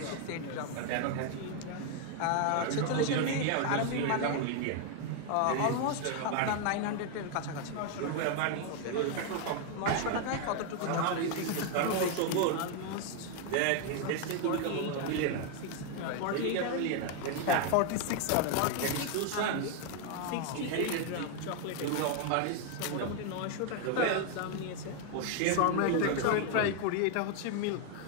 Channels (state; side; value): different; both; correlation 0.01